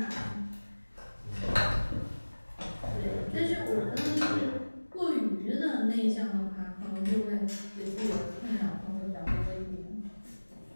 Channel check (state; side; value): inverted; both; correlation -1.00